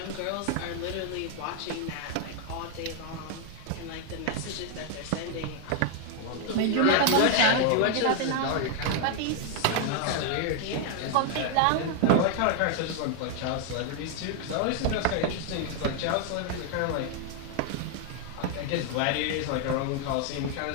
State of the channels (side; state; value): both; different; correlation 0.00